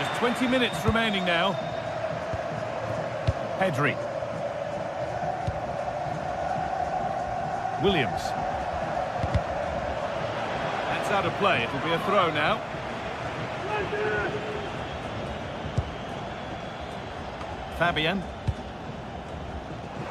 20 minutes remaining now. Pedri. Williams. That's out of play. It'll be a throw now. Fabian.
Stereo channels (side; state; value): both; identical; correlation 1.00